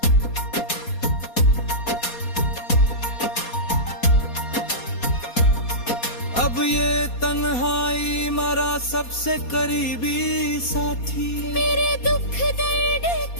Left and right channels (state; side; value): late; right; 4.2 ms